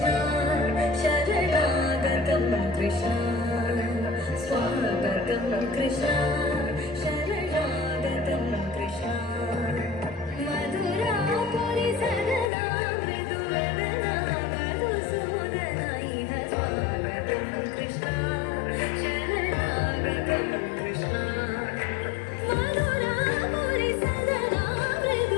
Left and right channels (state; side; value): drops out; right; at 12.5 s